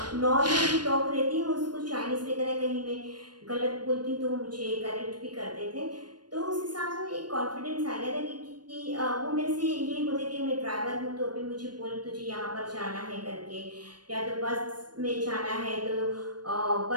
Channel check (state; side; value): late; left; 0.70 ms